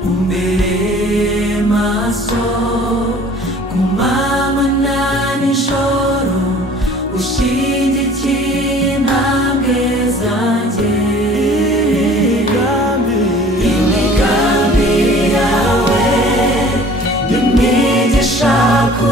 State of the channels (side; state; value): both; normal; correlation 0.49